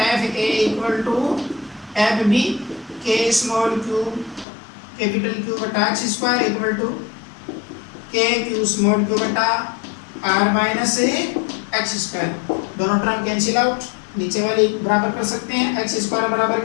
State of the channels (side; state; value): right; drops out; at 4.5 s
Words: A equal to F B K small Q capital Q बटा X square equal to K Q small Q बटा आर माइनस एक्स स्क्वायर। दोनों टर्म कैंसिल आउट, नीचे वाली बराबर कर सकते हैं। एक्स स्क्वायर बराबर